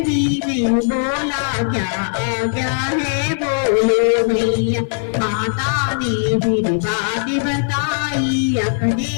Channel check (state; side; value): silent; right; 56 dB below the other